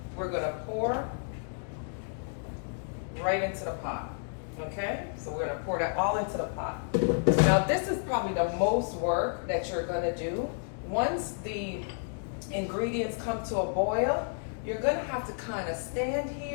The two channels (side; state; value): right; silent; digital silence